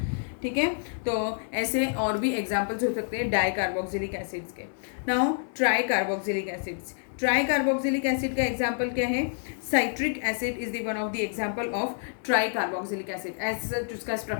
ठीक है। तो ऐसे और भी एग्जाम्पल्स हो सकते हैं डाई कार्बोक्सिलिक एसिड्स के। Now try carboxylic acids. Try carboxylic acid का एग्जाम्पल क्या है? Citric acid is the one of the example of try carboxylic acid. ऐसा उसका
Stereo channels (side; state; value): right; silent; 59 dB below the other